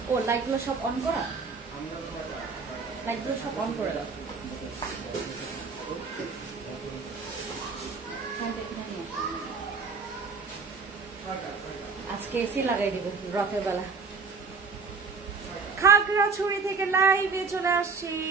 ও লাইটগুলো সব অন করা, লাইটগুলো সব অন করে দাও। আজকে এসি লাগাই দিব রাতের বেলা। খাগড়াছড়ি থেকে লাইভে চলে আসছি।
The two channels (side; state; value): left; quieter; 4.8 dB